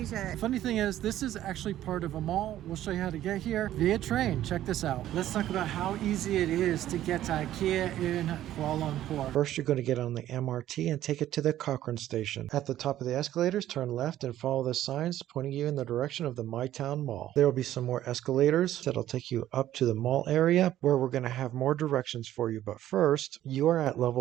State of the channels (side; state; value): left; quieter; 12.9 dB